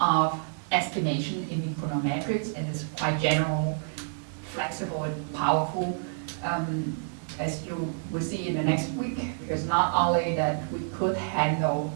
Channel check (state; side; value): silent; left; 56 dB below the other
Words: estimation in econometrics, and it's quite general, flexible, and powerful. As you will see in the next week, because not only that we could handle